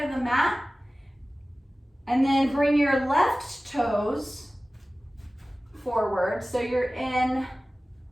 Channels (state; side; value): normal; both; correlation 0.97